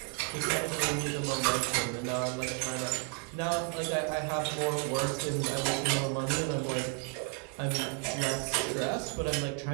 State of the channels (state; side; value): quieter; left; 34.3 dB